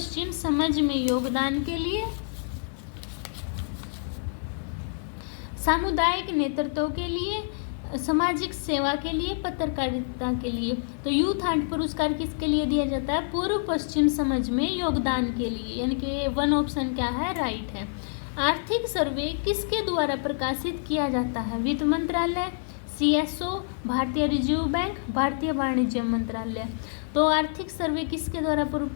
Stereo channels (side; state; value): right; silent; digital silence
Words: समझ में योगदान के लिए, सामुदायिक नेतृत्व के लिए, सामाजिक सेवा के लिए, पत्रकारिता के लिए। तो यूथ हंट पुरस्कार किसके लिए दिया जाता है? पूर्व पश्चिम समझ में योगदान के लिए, यानी कि वन ऑप्शन क्या है? राइट है। आर्थिक सर्वे किसके द्वारा प्रकाशित किया जाता है? वित्त मंत्रालय, CSO, भारतीय रिजर्व बैंक, भारतीय वाणिज्य मंत्रालय। तो आर्थिक सर्वे किसके द्वारा